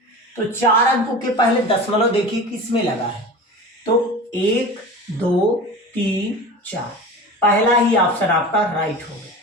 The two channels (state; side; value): normal; both; correlation 0.33